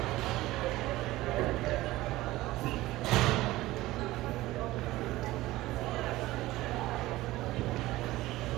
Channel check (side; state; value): left; quieter; 17.7 dB